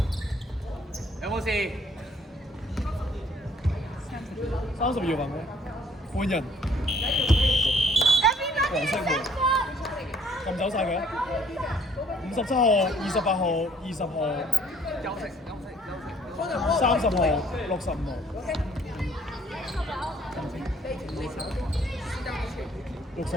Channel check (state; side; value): normal; both; correlation 0.60